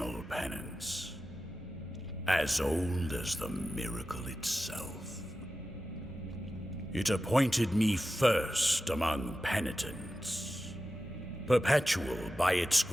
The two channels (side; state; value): both; normal; correlation 0.93